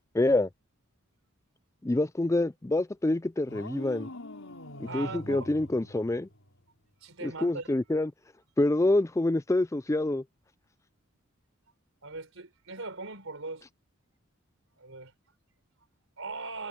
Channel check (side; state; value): both; normal; correlation 0.83